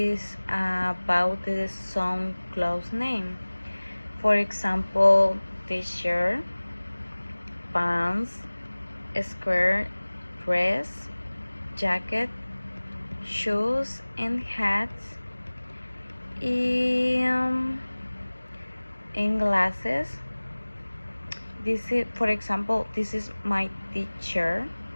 about the some clothes name. For example, t-shirt, pants, skirt, dress, jacket, shoes, and hats, and, and glasses. This is, for example, this is my t-shirt.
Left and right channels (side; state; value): both; inverted; correlation -1.00